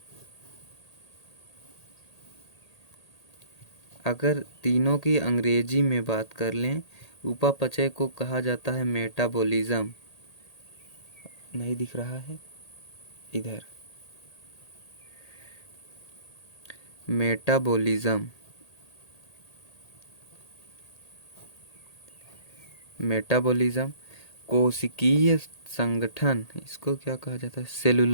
अगर तीनों की अंग्रेजी में बात कर लें, उपापचय को कहा जाता है मेटाबॉलिज्म। नहीं दिख रहा है इधर, मेटाबॉलिज्म, मेटाबॉलिज्म। कोशिकीय संगठन इसको क्या कहा जाता है,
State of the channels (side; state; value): right; late; 1.8 ms